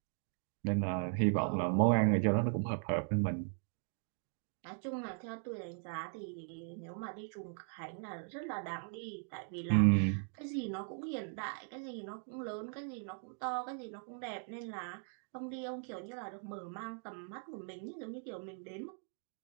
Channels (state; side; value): silent; left; 52 dB below the other